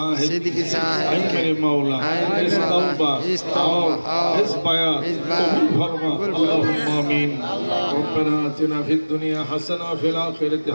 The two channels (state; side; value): inverted; both; correlation -1.00